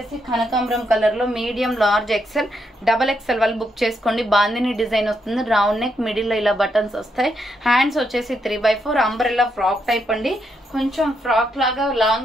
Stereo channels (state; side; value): normal; both; correlation 0.79